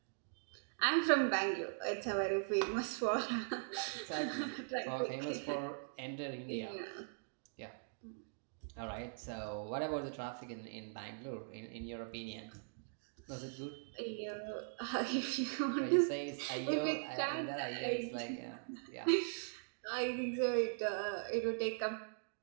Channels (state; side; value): silent; left; digital silence